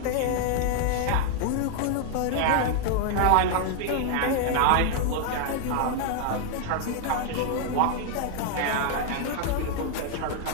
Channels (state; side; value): different; both; correlation 0.00